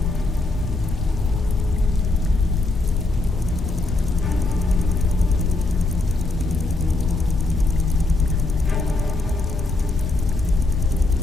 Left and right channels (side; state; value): right; quieter; 3.0 dB